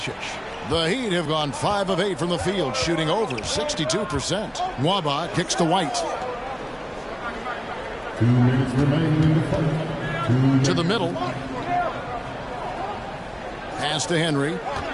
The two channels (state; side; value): identical; both; correlation 1.00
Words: The Heat have gone 5 of 8 from the field, shooting over 62%. Nwaba kicks to White. 2 minutes remaining in the fight. To the middle. Pass to Henry.